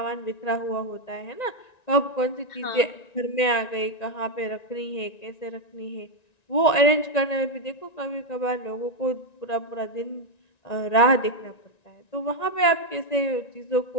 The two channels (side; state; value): right; late; 1.9 ms